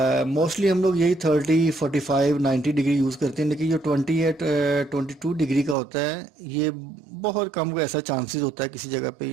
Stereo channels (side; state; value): left; drops out; at 5.8 s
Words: मोस्टली हम लोग यही 30, 45, 90 डिग्री यूज़ करते हैं, लेकिन जो 22 डिग्री का होता है ये बहुत कम को ऐसा चांसेस होता है किसी जगह पे